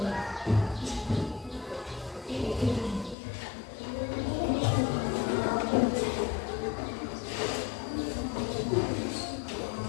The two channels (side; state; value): right; drops out; at 3.2 s